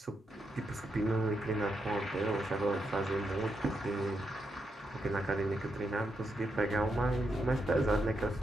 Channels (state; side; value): normal; both; correlation 0.83